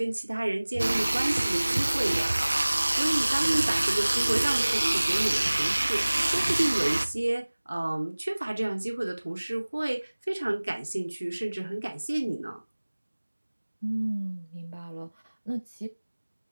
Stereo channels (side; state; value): both; inverted; correlation -1.00